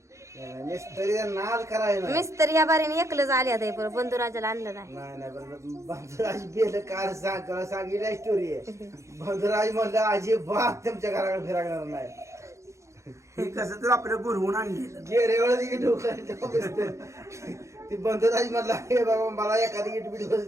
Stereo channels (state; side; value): late; left; 0.14 ms